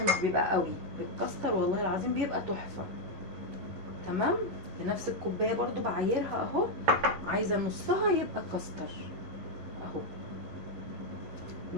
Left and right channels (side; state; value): left; late; 11 ms